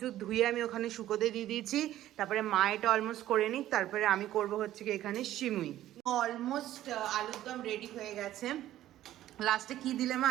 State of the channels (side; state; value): left; quieter; 13.4 dB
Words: ধুয়ে আমি ওখানে শুকোতে দিয়ে দিয়েছি। তারপরে মা এটা অলমোস্ট করে নিক, তারপরে আমি করব হচ্ছে কি এখানে সিমুই। অলমোস্ট আলুর দম রেডি হয়ে গেছে। লাস্টে কি দিলে মা